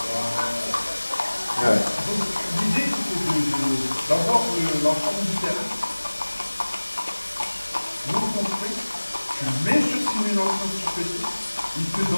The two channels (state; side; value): inverted; both; correlation -1.00